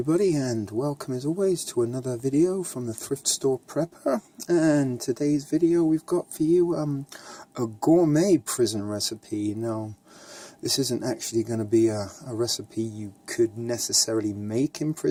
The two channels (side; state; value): both; identical; correlation 1.00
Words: and welcome as always to another video from the Thrift Store Prepper. And today's video we've got for you a gourmet prison recipe. Now, this isn't actually going to be a recipe you could necessarily make in